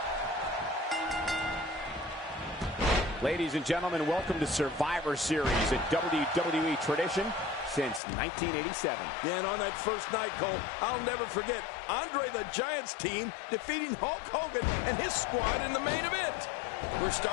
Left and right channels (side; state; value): right; drops out; at 8.0 s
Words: Ladies and gentlemen, welcome to Survivor Series, a WWE tradition since 1987. Yeah, and on that first night, Cole, I'll never forget Andre the Giant's team defeating Hulk Hogan and his squad in the main event. We're